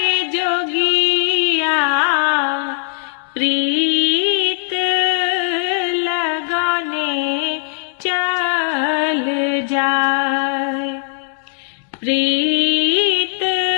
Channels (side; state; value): right; silent; digital silence